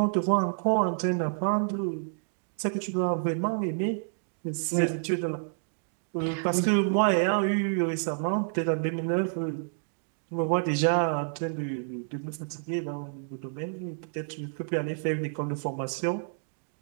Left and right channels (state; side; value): silent; left; digital silence